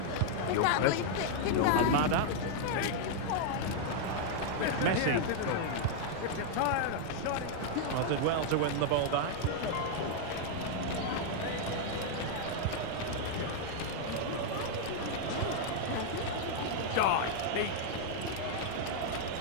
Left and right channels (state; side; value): different; both; correlation 0.00